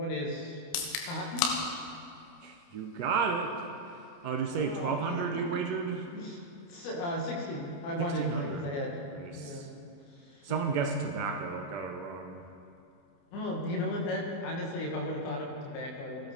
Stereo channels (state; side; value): late; right; 29 ms